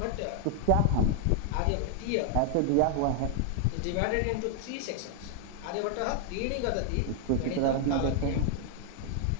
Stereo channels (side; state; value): both; different; correlation 0.00